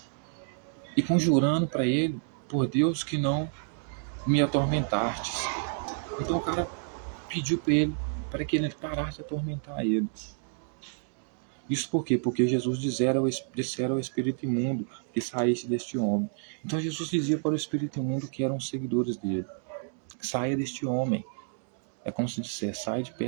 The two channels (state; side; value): silent; left; 58 dB below the other